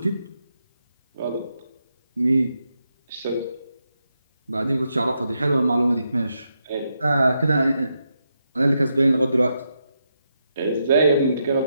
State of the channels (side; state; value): both; inverted; correlation -0.83